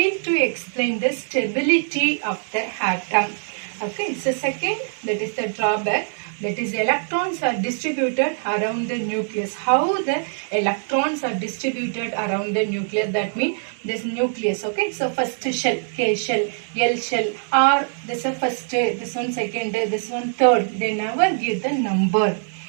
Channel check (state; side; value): silent; left; 63 dB below the other